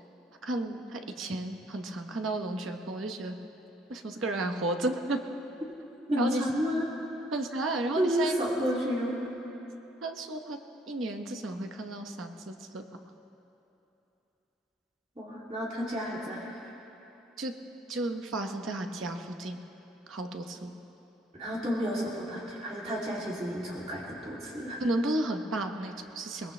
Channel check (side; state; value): both; normal; correlation 0.65